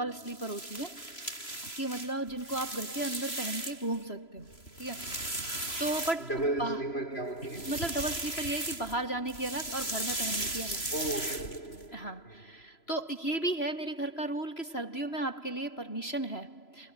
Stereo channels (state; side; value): late; right; 3.0 ms